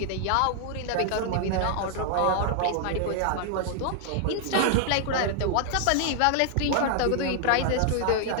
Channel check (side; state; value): both; different; correlation 0.00